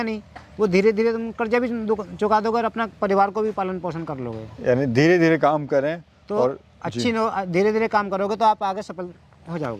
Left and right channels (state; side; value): identical; both; correlation 1.00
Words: नहीं, वो धीरे धीरे तुम कर्जा भी चुका दोगे और अपना परिवार को भी पालन पोषण कर लोगे। यानी धीरे धीरे काम करें तो और धीरे धीरे काम करोगे तो आप आगे सफल हो